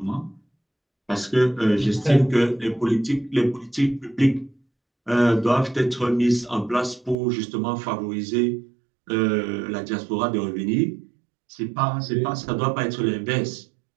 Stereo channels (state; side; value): drops out; left; at 7.2 s